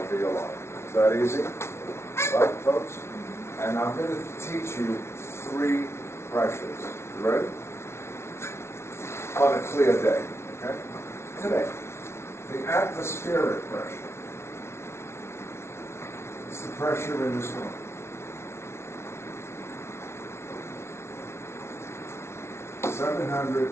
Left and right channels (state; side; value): late; right; 0.13 ms